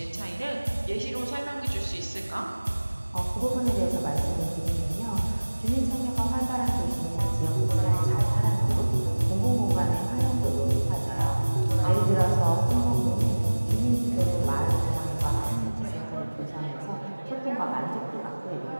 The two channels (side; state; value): both; inverted; correlation -1.00